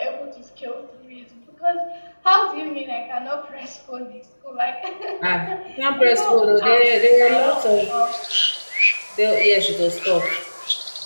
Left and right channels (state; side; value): inverted; both; correlation -1.00